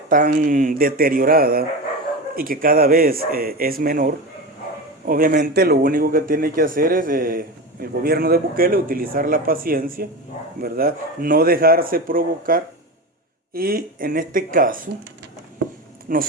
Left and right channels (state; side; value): normal; both; correlation 0.23